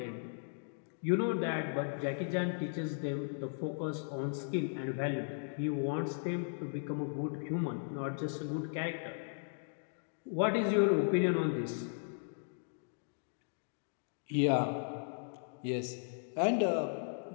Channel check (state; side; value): silent; right; digital silence